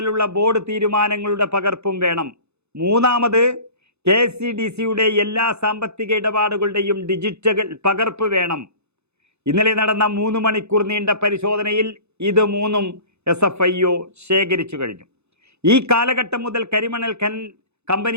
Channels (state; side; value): late; left; 0.81 ms